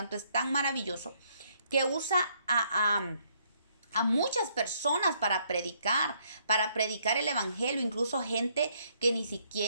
es tan maravilloso que usa a muchas personas para predicar el evangelio, incluso gente que ni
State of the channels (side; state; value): both; inverted; correlation -0.70